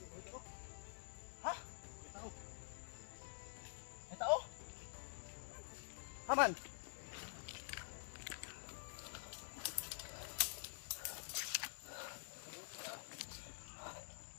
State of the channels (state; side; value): silent; right; digital silence